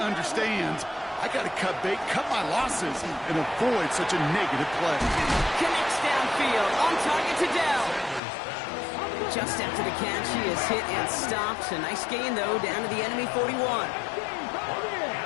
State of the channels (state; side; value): drops out; right; at 8.2 s